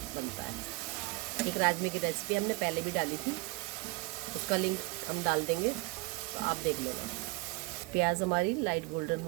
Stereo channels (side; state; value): left; quieter; 24.6 dB